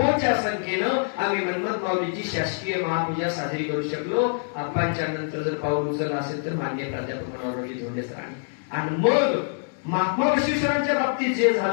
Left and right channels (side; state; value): right; silent; 62 dB below the other